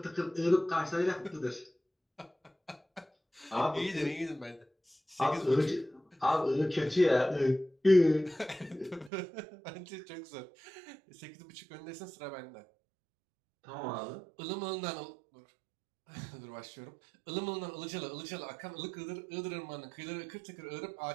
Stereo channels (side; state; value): left; drops out; at 9.1 s